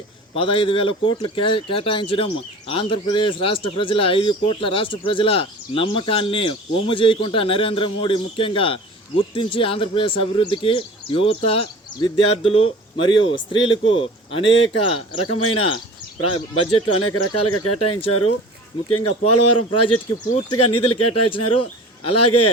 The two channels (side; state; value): both; normal; correlation 0.40